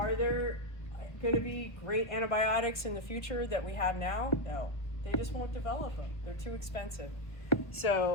there going to be great antibiotics in the future that we have now? No. They just won't develop them. They're too expensive.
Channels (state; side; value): late; right; 1.4 ms